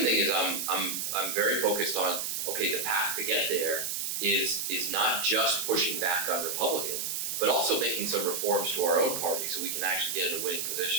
thing is I'm very focused on, okay, the path to get there is not just pushing back on Republicans, but also making some reforms to our own party so we can actually get in a winning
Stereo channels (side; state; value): right; noise; hiss, 2 dB below the sound